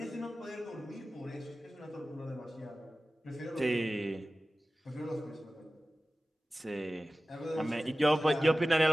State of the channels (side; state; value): both; normal; correlation 0.96